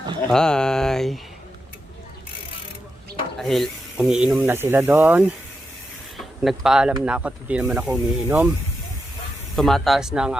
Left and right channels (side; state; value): both; normal; correlation 0.87